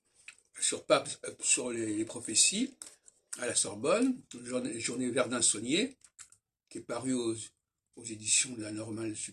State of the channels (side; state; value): both; identical; correlation 1.00